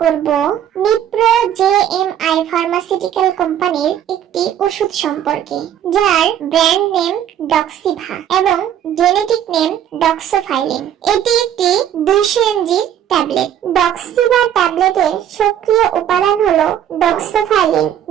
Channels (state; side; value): quieter; left; 10.3 dB